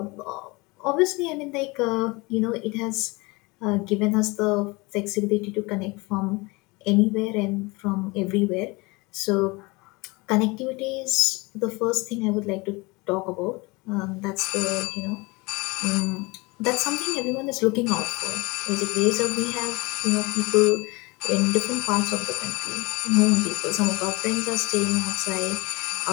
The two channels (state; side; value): quieter; right; 25.1 dB